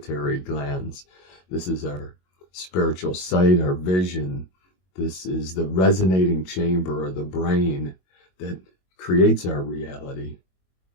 glands. This is our spiritual sight, our vision. This is the resonating chamber of the brain that creates our reality.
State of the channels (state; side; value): late; right; 22 ms